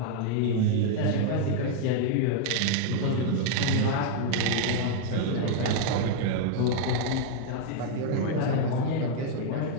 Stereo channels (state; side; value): different; both; correlation 0.00